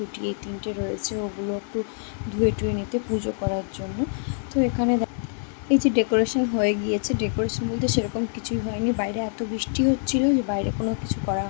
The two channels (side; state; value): right; silent; digital silence